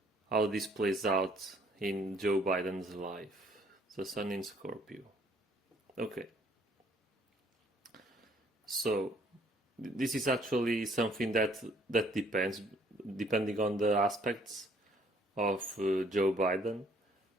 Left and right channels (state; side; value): normal; both; correlation 0.62